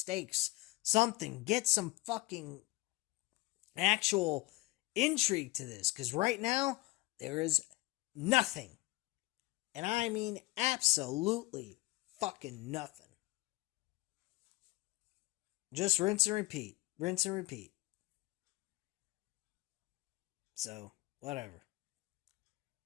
something. Get some fucking actual intrigue to this. Because right now, there is nothing. And I mean absolutely fucking nothing. Just rinse and repeat. Rinse and repeat. So, whatever.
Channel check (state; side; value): quieter; right; 20.8 dB